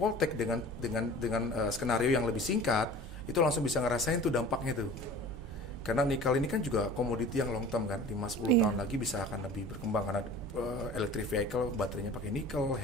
dengan skenario yang lebih singkat, itu langsung bisa ngerasain tuh dampaknya tuh. Karena nikel ini kan juga komoditi yang long term kan, 5-10 tahun lagi bisa akan lebih berkembang karena electric vehicle baterainya pakai nikel,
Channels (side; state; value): both; normal; correlation 0.42